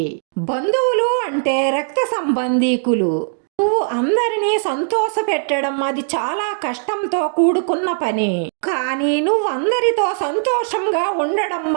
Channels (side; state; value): left; silent; digital silence